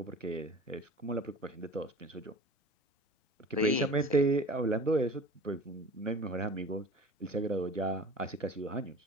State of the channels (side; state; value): both; normal; correlation 0.40